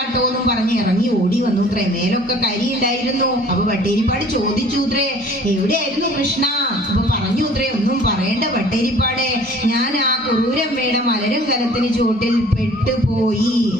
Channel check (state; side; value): normal; both; correlation 0.50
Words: എന്നും പറഞ്ഞ് ഇറങ്ങി ഓടി വന്നുത്രേ. മേലൊക്കെ കരി ഉണ്ടായിരുന്നു. അപ്പൊ പട്ടേരിപ്പാട് ചോദിച്ചുത്രേ, എവിടെയായിരുന്നു കൃഷ്ണ? അപ്പൊ പറഞ്ഞുത്രേ, ഒന്നും പറയേണ്ട പട്ടേരിപ്പാടെ, ഞാൻ ആ കുറൂരമ്മയുടെ മലരും കലത്തിന് ചുവട്ടിൽ പെട്ടുപോയി.